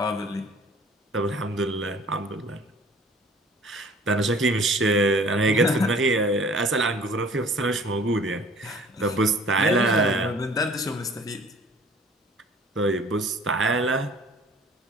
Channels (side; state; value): both; normal; correlation 0.51